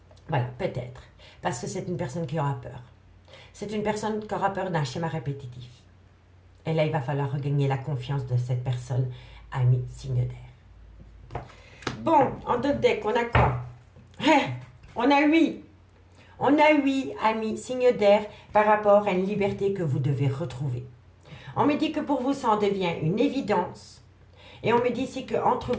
Voilà, peut-être. Parce que c'est une personne qui aura peur. C'est une personne qui aura peur d'un schéma répétitif. Et là, il va falloir regagner la confiance de cette personne, ami signe d'air. Bon, en d'autres decks, on a quoi? On a 8. On a 8 amis signe d'air par rapport à une liberté que vous devez retrouver. On me dit que pour vous, ça en devient une évidence. Et on me dit ici qu'entre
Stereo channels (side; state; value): both; identical; correlation 1.00